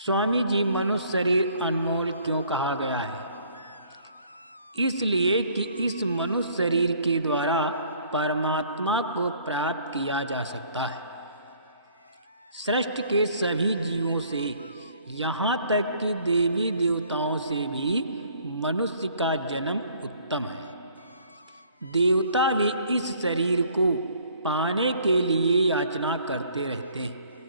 जी, मनुष्य शरीर अनमोल क्यों कहा गया है? इसलिए कि इस मनुष्य शरीर के द्वारा परमात्मा को प्राप्त किया जा सकता है। सृष्टि के सभी जीवों से, यहाँ तक कि देवी देवताओं से भी मनुष्य का जन्म उत्तम है। देवता भी इस शरीर को पाने के लिए याचना करते रहते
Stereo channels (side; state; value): both; inverted; correlation -0.59